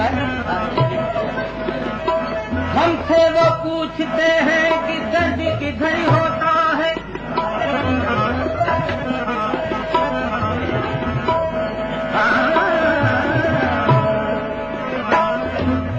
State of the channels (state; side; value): identical; both; correlation 1.00